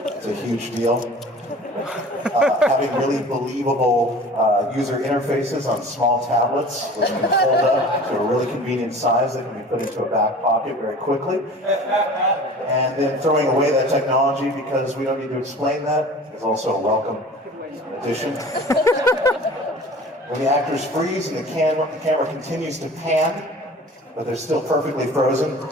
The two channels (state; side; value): normal; both; correlation 0.42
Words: a huge deal. Having really believable user interfaces on small tablets, which can fold up to a really convenient size that can be put into a back pocket very quickly. And then throwing away that technology because we don't need to explain that is also a welcome addition. When the actors freeze and the camera continues to pan, but they're still perfectly frozen,